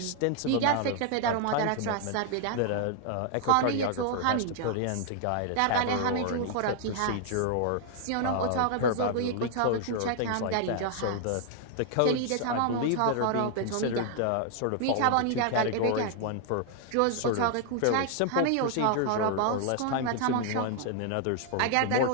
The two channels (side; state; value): both; different; correlation 0.00